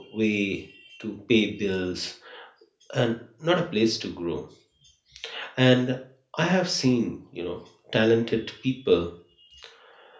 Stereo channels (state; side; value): identical; both; correlation 1.00